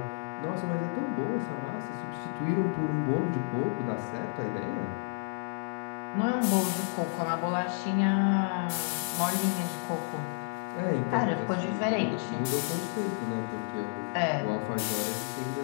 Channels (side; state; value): right; silent; 57 dB below the other